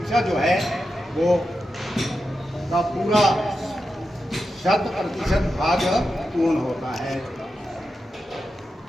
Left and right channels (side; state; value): both; normal; correlation 0.89